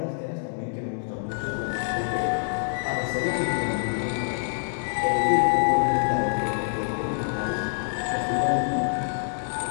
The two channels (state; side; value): silent; right; digital silence